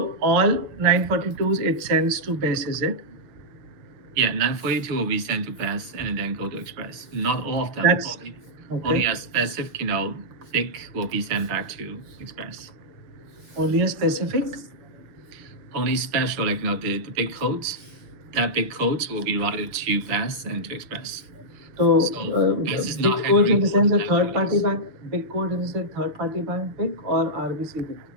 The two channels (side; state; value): left; late; 6.8 ms